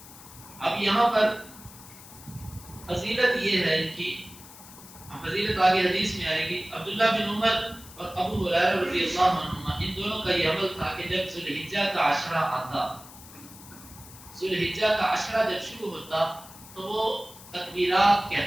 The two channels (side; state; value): left; noise; hiss, 18 dB below the sound